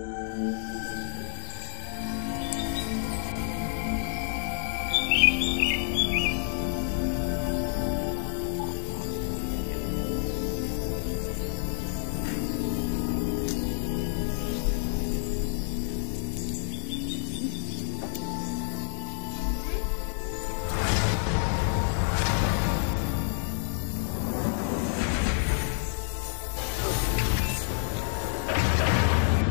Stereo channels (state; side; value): silent; right; 59 dB below the other